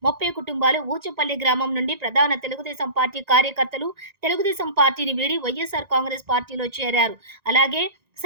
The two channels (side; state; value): left; late; 1.9 ms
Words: 30 కుటుంబాలు, ఊచపల్లి గ్రామం నుండి ప్రధాన తెలుగుదేశం పార్టీ కార్యకర్తలు తెలుగుదేశం పార్టీని వీడి వైఎస్ఆర్ కాంగ్రెస్ పార్టీలో చేరారు. అలాగే